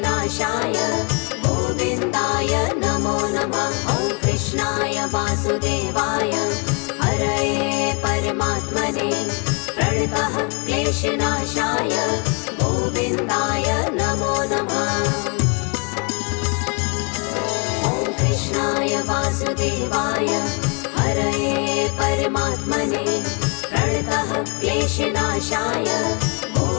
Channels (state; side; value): quieter; right; 35.0 dB